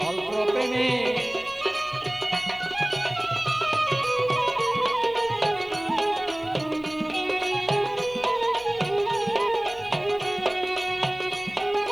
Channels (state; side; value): noise; right; hum, 26 dB below the sound